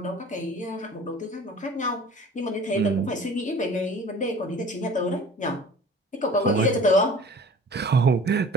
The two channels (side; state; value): both; normal; correlation 0.45